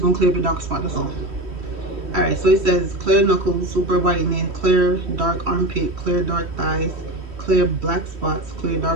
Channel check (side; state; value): left; late; 3.1 ms